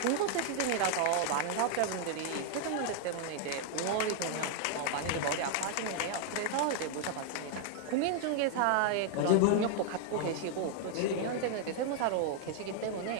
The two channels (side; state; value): both; different; correlation 0.00